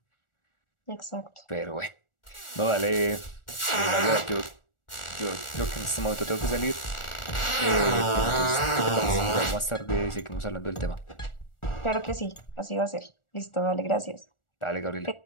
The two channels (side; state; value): right; late; 1.4 ms